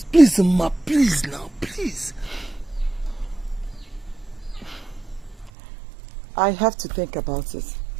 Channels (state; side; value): drops out; left; at 5.5 s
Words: Please, Ma, please now, please. I have to think about it.